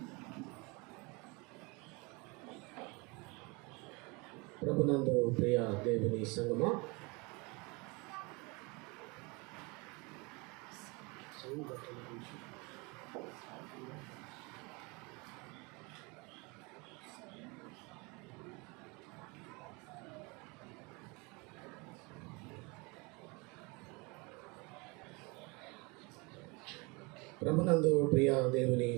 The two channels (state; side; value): quieter; left; 27.8 dB